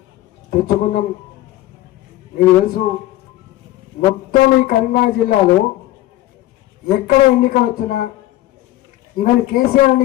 తెచ్చుకున్నాం, మీకు తెలుసు. మొత్తం ఈ కరీంనగర్ జిల్లాలో ఎక్కడ ఎన్నికలు వచ్చినా, ఈవెన్ కేసీఆర్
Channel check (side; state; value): right; quieter; 15.7 dB